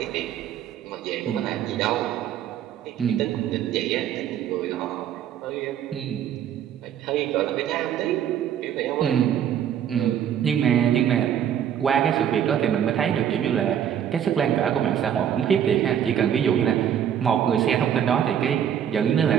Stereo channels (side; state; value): left; quieter; 9.5 dB